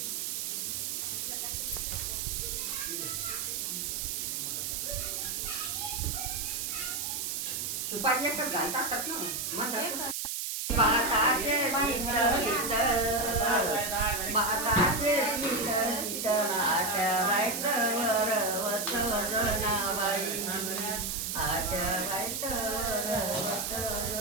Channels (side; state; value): right; noise; hiss, 2 dB below the sound